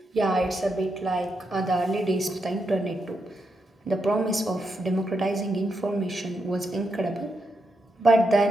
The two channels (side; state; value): both; normal; correlation 0.83